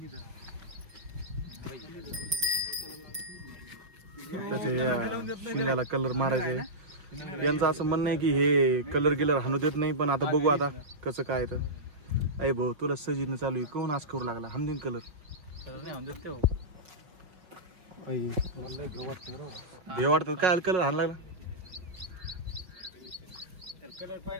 त्याच्या शिंगाला कलर मारायचा आहे. यांचं असं म्हणणं आहे की हे कलर हाणू देत नाही, पण आता बघू आता कसं काय. तर अय भाऊ तुला सजीनं चालू आहे कोण आज करू लागला हमदीन कलर हे वाटत काय कलर हाण लागला.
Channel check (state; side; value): late; left; 5.6 ms